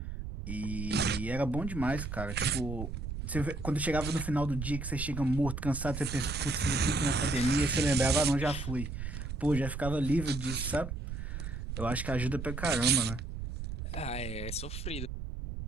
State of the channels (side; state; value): right; noise; rumble, 6 dB below the sound